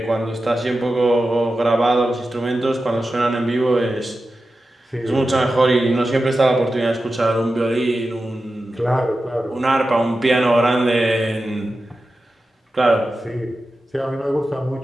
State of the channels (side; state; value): both; normal; correlation 0.92